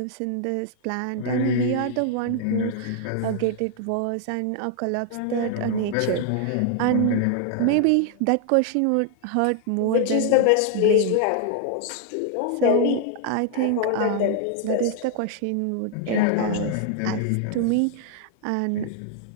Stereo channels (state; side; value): different; both; correlation 0.00